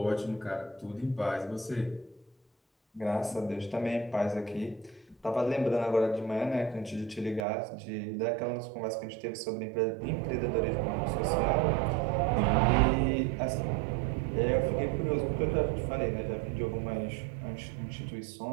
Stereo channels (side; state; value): left; drops out; at 7.5 s